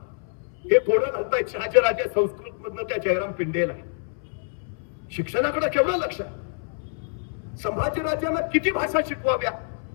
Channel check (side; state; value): right; silent; 61 dB below the other